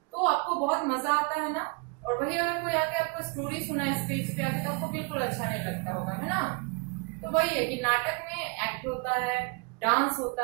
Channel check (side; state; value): left; quieter; 31.4 dB